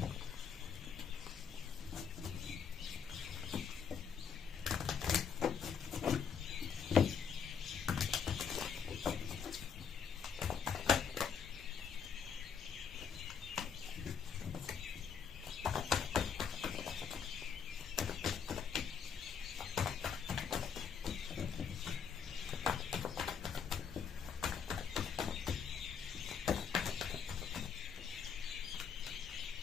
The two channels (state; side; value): quieter; right; 6.8 dB